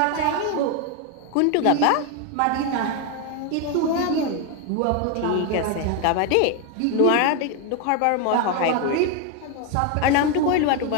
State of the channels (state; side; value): different; both; correlation 0.01